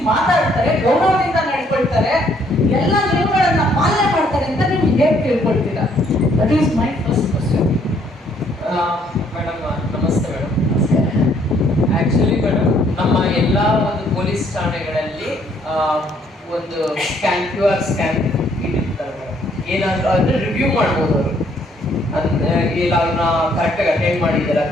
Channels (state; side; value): normal; both; correlation 0.66